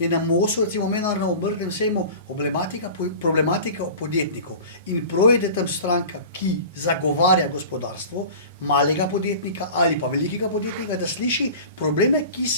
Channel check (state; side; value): inverted; both; correlation -0.38